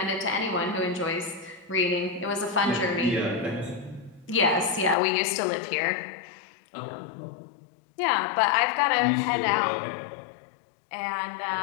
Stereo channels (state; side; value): drops out; right; at 5.0 s